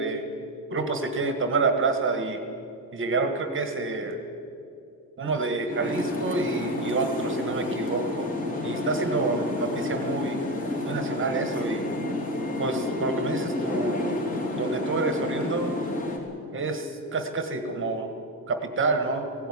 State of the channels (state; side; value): normal; both; correlation 0.12